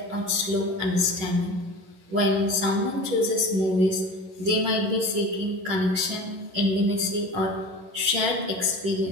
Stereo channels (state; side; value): late; left; 11 ms